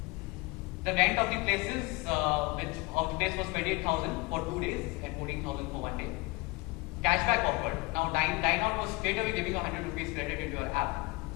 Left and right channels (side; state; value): right; quieter; 24.7 dB